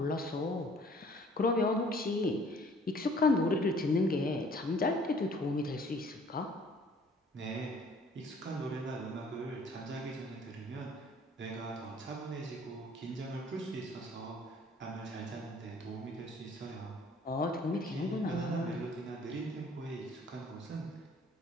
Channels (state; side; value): normal; both; correlation 0.55